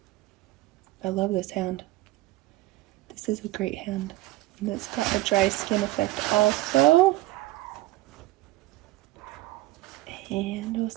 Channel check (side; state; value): left; quieter; 17.8 dB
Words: I love this hand. This is a great hand. And it's got the dry skin effect also. And we'll